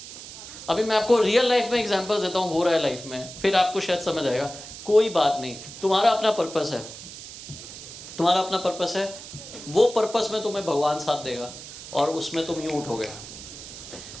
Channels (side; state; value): right; noise; hiss, 13 dB below the sound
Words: अभी मैं आपको रियल लाइफ में एग्जांपल्स देता हूँ, हो रहा है लाइफ में, फिर आपको शायद समझ आएगा. कोई बात नहीं, तुम्हारा अपना पर्पस है, वो पर्पस में तुम्हें भगवान साथ देगा और उसमें तुम यूं उठोगे.